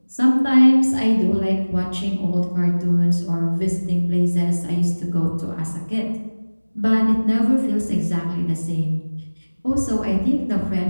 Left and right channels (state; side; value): inverted; both; correlation -1.00